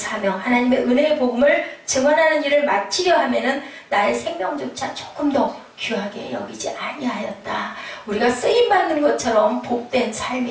하나님의 은혜의 복음을 증언하는 일을 마치려 하면은 나의 생명조차 조금 더 귀하게 여기지 아니하였다. 우리가 쓰임받는 것처럼 복된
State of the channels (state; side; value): identical; both; correlation 1.00